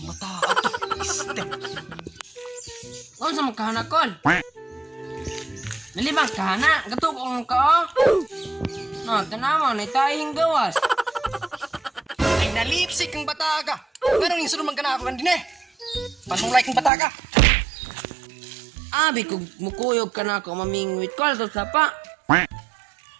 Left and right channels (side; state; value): left; drops out; at 16.9 s